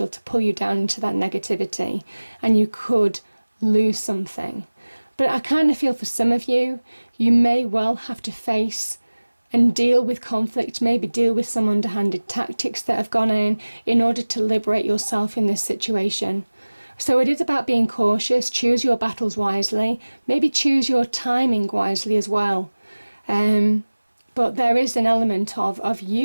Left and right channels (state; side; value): inverted; both; correlation -1.00